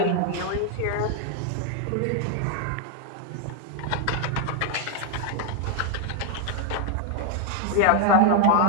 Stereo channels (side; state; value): both; different; correlation 0.00